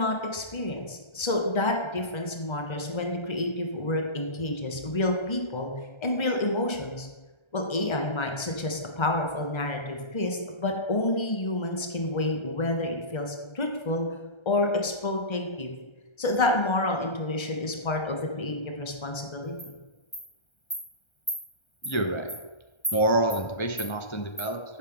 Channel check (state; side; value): late; right; 1.3 ms